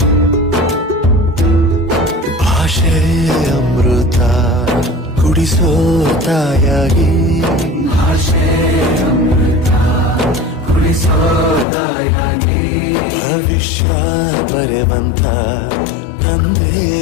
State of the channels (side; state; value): right; drops out; at 11.7 s